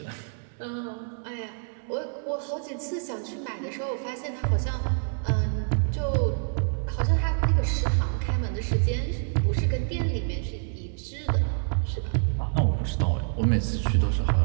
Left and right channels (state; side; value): silent; left; digital silence